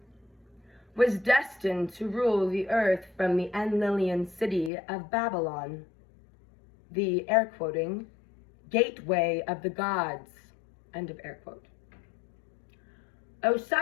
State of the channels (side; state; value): right; drops out; at 4.7 s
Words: was destined to rule the earth from the Enlilian city of Babylon, the, air quoting, gateway of the gods, end of air quote.